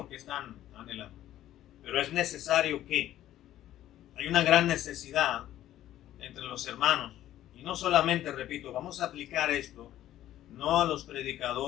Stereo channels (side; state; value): right; quieter; 13.0 dB